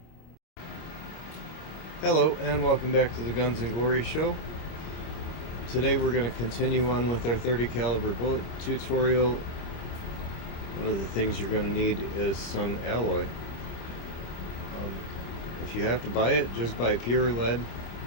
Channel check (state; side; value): late; right; 25 ms